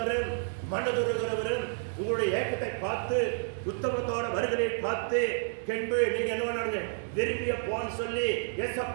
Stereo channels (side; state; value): left; silent; digital silence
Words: மனதுருகிறவரும் உங்களுடைய ஏக்கத்தை பார்த்து உத்தமத்தோட வருகளை பார்த்து கென்பு நீங்க என்ன பண்ணாங்க விரும்பிய போன்னு சொல்லி